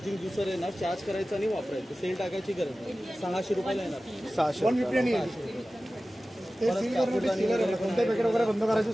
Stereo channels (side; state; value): both; normal; correlation 0.96